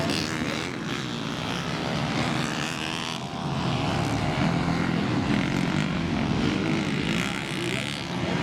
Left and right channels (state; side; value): identical; both; correlation 1.00